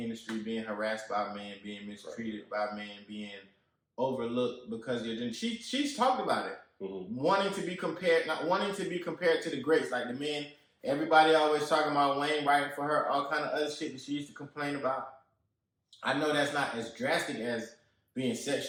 being harassed by men, being mistreated by men, being overlooked because you're doing. She's talked about it, wanting to be compared to the greats, like the men. Everybody always talking about Wayne writing for her, all kind of other shit that she used to complain about. I know that's not as drastic as being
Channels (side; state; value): both; identical; correlation 1.00